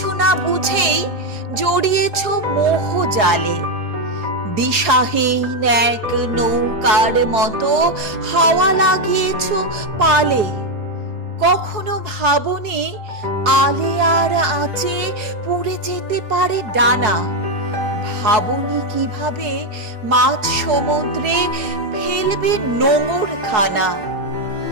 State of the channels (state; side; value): late; left; 4.7 ms